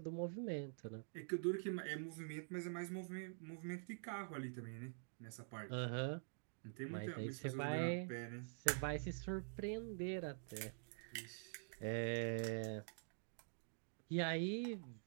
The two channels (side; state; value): left; silent; digital silence